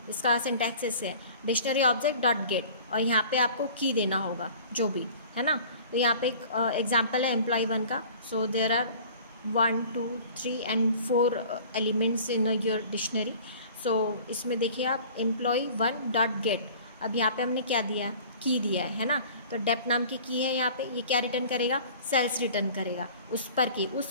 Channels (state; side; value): inverted; both; correlation -0.45